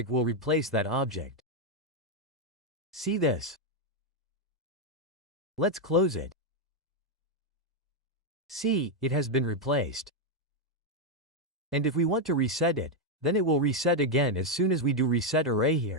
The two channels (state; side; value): normal; both; correlation 0.02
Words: will replace that object. See this? Let's close it. See, it has been replaced. And if we want to reset it, then it will reset again as soon as we do Reset Array